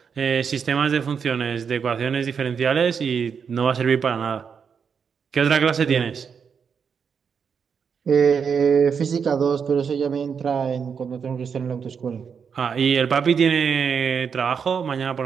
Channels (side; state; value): left; quieter; 6.6 dB